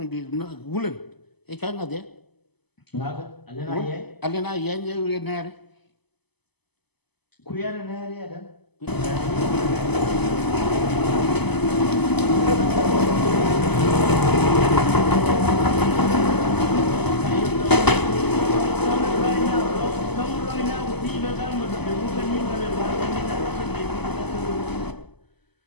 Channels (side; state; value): right; late; 0.99 ms